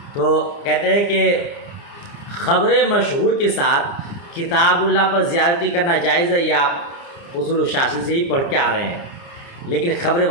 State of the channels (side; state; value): right; late; 29 ms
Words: تو کہتے ہیں کہ خبر مشہور کے ساتھ کتاب اللہ پر زیادتی کرنا جائز ہے، یہ آپ اصول الشاشی سے ہی پڑھ کے آ رہے ہیں، لیکن خبر